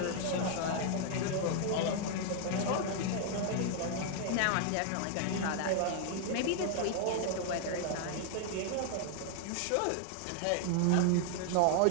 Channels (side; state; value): both; different; correlation 0.00